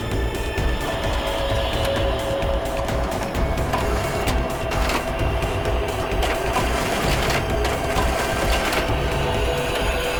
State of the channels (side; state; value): both; identical; correlation 1.00